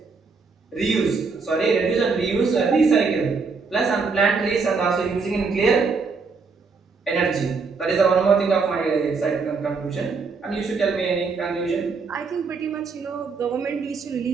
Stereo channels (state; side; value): quieter; left; 4.7 dB